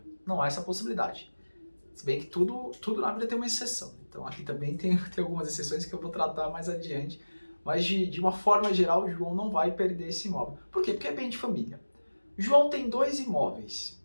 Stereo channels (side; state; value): both; inverted; correlation -1.00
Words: Não há essa possibilidade. Se bem que tudo na vida tem uma exceção. Então aqui também tem algumas exceções que eu vou tratar mais adiante. Mas de uma forma geral, o João não vai perder esse imóvel. Por quê? Porque é bem de família. João tem dois imóveis.